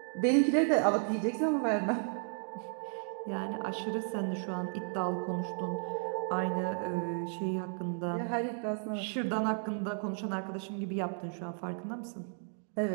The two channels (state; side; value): silent; left; 55 dB below the other